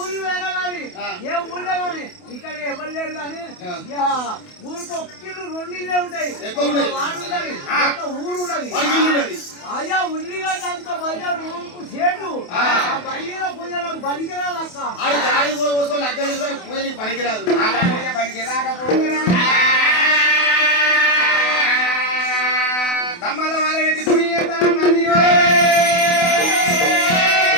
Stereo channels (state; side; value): late; right; 28 ms